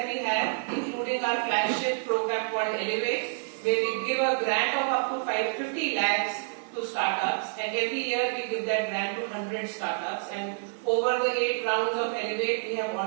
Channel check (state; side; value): silent; left; 55 dB below the other